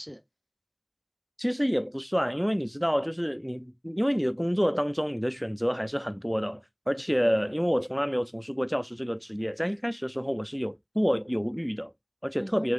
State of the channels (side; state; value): both; identical; correlation 1.00